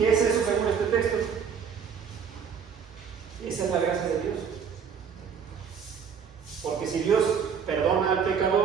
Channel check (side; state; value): left; quieter; 6.9 dB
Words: es eso según este texto? Esa es la gracia de Dios. Porque si Dios perdona al